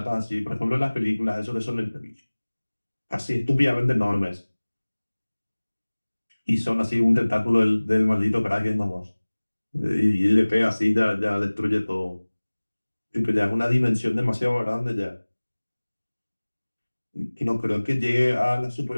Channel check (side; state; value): both; inverted; correlation -1.00